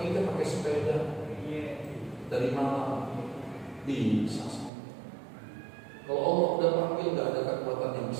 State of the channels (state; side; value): drops out; left; at 4.7 s